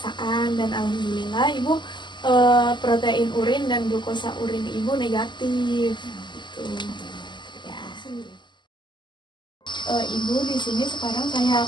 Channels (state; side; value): late; right; 0.22 ms